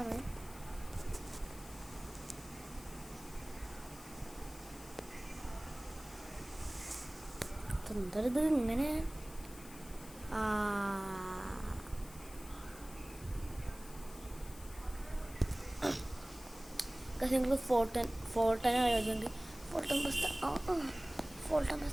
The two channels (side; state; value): left; noise; hiss, 17 dB below the sound